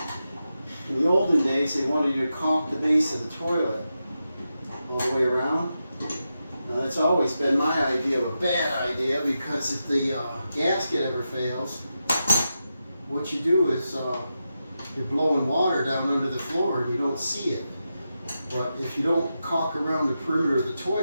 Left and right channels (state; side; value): inverted; both; correlation -0.89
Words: In the olden days, they wanted you to caulk the base of the toilet all the way around. Now that's always been my idea of a bad idea, because if the gasket ever fails, what you do is you're blowing water down under the floor and you don't see it. But if you don't caulk around the perimeter of the